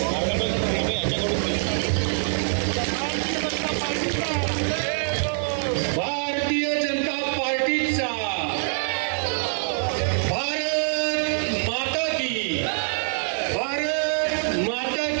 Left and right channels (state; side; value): silent; left; digital silence